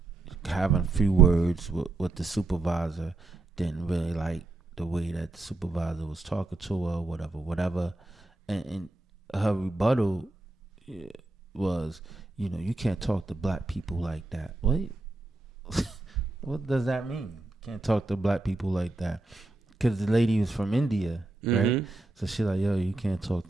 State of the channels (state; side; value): quieter; left; 3.1 dB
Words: having a few words with the supervisor. Didn't really like the way that the supervisor was talking to her, whatever. And her rebuttal was, you can't talk to black people like that. What? What does that mean? Can't talk to black people like that? Because the lady was from India, right? Mm-hmm. So she's like, yo, you can't talk